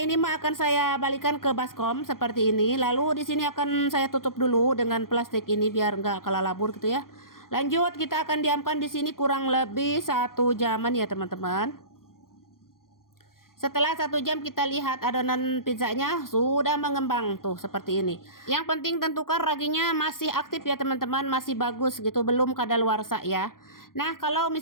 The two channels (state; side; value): late; right; 0.91 ms